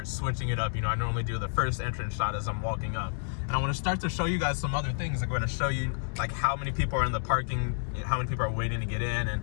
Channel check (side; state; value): right; silent; digital silence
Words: switching it up. You know, I normally do the first entrance shot as I'm walking up, and I want to start to show you guys some other things. I'm going to show you like how many people are in the parking, how many people are waiting to get in,